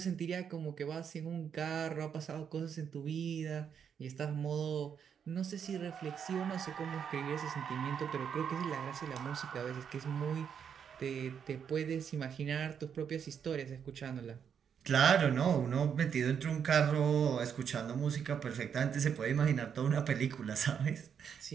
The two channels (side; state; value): left; quieter; 7.6 dB